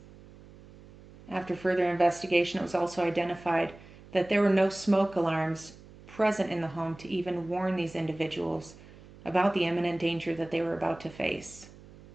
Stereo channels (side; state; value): right; noise; hum, 21 dB below the sound